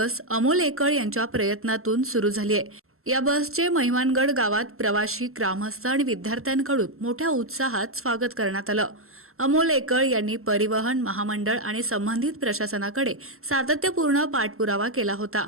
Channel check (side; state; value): left; late; 0.62 ms